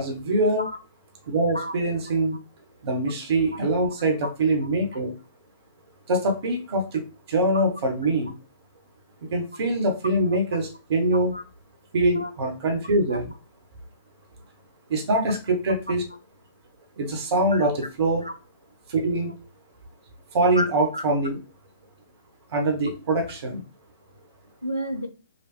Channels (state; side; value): inverted; both; correlation -0.47